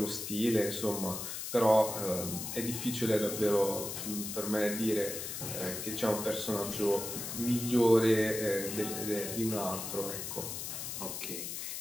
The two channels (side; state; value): left; noise; hiss, 6 dB below the sound